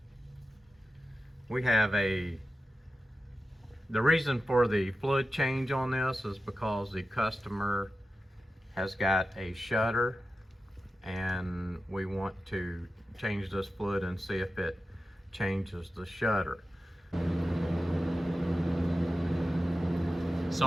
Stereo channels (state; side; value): normal; both; correlation 0.93